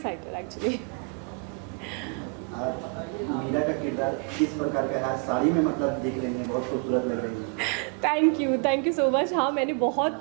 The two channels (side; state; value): left; quieter; 38.2 dB